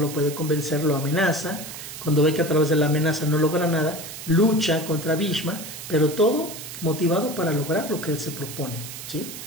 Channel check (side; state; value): right; noise; hiss, 11 dB below the sound